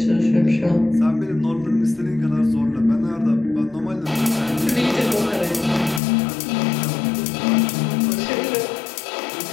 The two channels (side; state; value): right; drops out; at 6.0 s